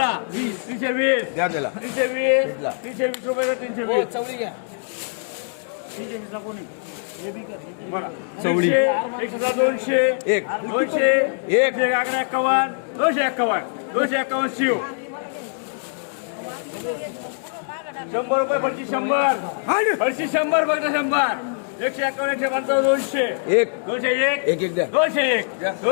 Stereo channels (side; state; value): right; silent; digital silence